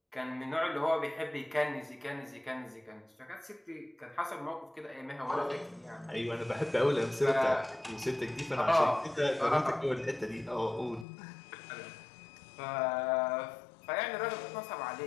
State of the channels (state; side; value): drops out; right; at 11.1 s